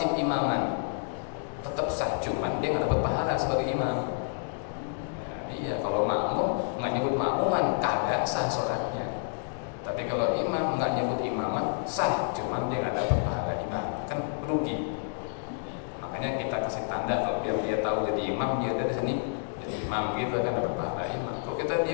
imaman, tetap sah, cuman dia nggak dapat pahala sebagai imam. Iya, kalau makmum nggak nyebut makmuman kagak sah sholatnya. Tapi kalau imam nggak nyebut imaman sah, cuman dia nggak dapat pahala imam, kan rugi. Makanya kita kasih tanda kalau biar dia tahu jadi imam, dia dari sini jadi imam gitu kan dapat pahala imam. Kalau kita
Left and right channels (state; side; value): silent; right; digital silence